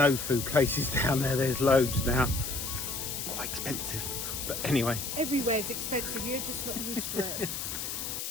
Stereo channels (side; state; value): left; noise; hiss, 4 dB below the sound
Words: food places down there. There's loads now. Quite expensive, but anyway. Everywhere's expensive, you're just not used to it.